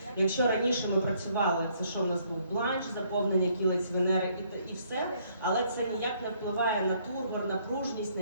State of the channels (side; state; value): both; inverted; correlation -0.67